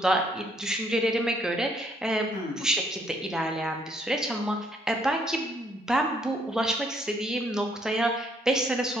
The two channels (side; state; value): both; normal; correlation 0.68